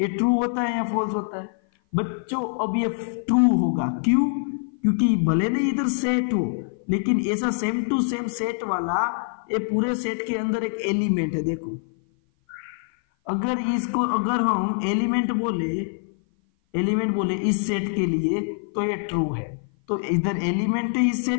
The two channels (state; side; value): silent; right; 56 dB below the other